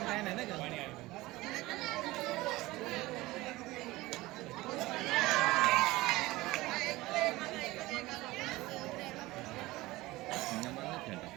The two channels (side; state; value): left; quieter; 19.4 dB